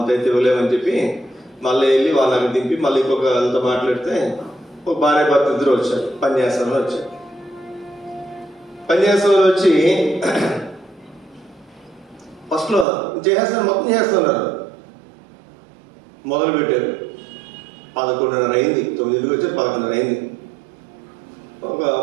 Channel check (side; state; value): left; drops out; at 12.9 s